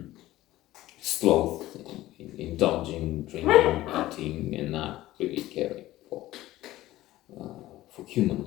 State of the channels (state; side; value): quieter; right; 16.0 dB